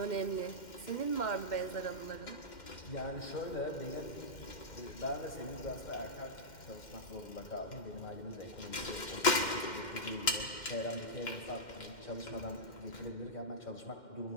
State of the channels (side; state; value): right; late; 2.1 ms